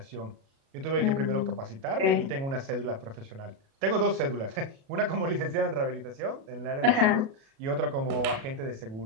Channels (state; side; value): late; left; 37 ms